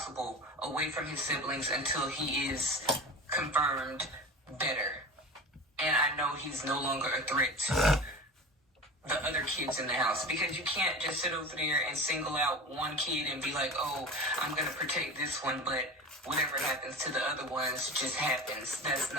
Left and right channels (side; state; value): both; normal; correlation 0.31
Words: away from his siblings until he is confirmed better. And I know he's no longer a threat to the other kids in the house, because you can't just sit over there and single out one kid and be like, oh, I'm going to protect this one, but whatever happens to the other ones just happens. That's